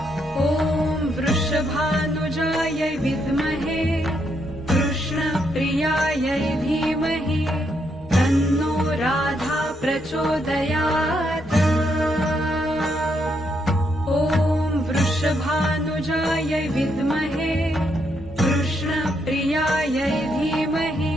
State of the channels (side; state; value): both; normal; correlation 0.77